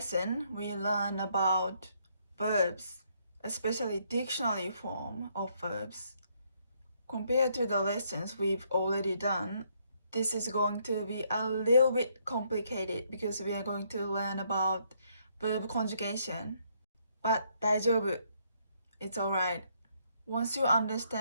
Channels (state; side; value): inverted; both; correlation -0.71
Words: we learn about verbs, especially dictionary form of verbs. Compared to the lessons we've already done, this is going to be a little bit complicated because we are going to learn about verb conjugation. But 大丈夫. It's alright. Once you